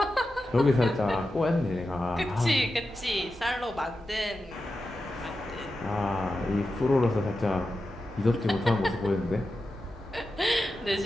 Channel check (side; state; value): both; normal; correlation 0.91